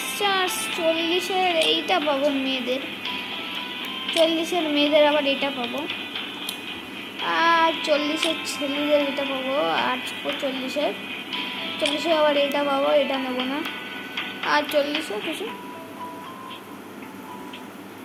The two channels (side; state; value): both; identical; correlation 1.00